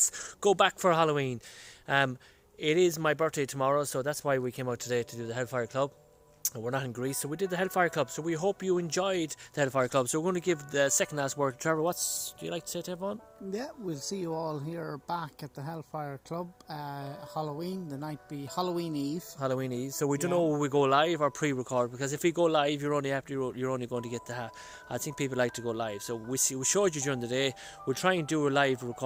go back for Halloween. It is my birthday tomorrow, so that's why we came out today to do the Hellfire Club. And we're not in Greece, so we did the Hellfire Club. So we hope you enjoyed the Hellfire Club. So we're going to give the second last word to Trevor. Do you like to say to everyone? Yeah, we'll see you all here back at the Hellfire Club. Halloween, the night be Halloween Eve. Halloween Eve. So we don't know if we go live or pre-record, because if we go live, you're only going to get I think people like to go live. So we showed you during the day. We'll try and do a live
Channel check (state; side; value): identical; both; correlation 1.00